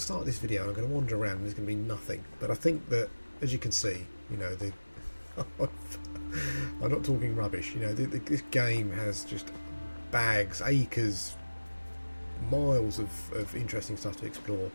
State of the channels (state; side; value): inverted; both; correlation -1.00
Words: start this video, I'm going to wander around and there's going to be nothing. But I think that, as you can see, you know, I'm not talking rubbish. You know, this game has just bags, acres, miles of interesting stuff to explore.